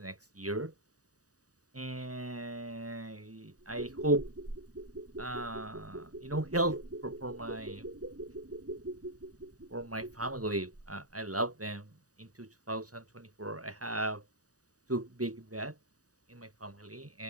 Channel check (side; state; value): left; late; 0.66 ms